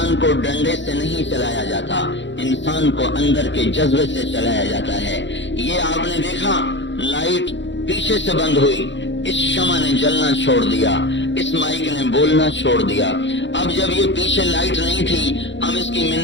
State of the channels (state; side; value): late; right; 0.53 ms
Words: کو ڈنڈے سے نہیں چلایا جاتا، انسان کو اندر کے جذبے سے چلایا جاتا ہے۔ یہ آپ نے دیکھا، لائٹ پیچھے سے بند ہوئی، اس شمع نے جلنا چھوڑ دیا، اس مائک نے بولنا چھوڑ دیا۔ اب جب یہ پیچھے لائٹ نہیں تھی، ہم اس کی